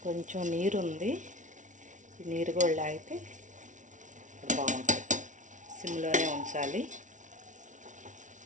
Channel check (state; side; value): late; left; 0.37 ms